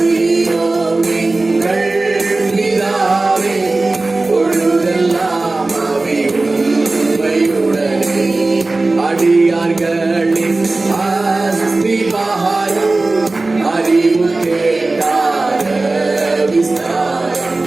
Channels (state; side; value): quieter; left; 3.2 dB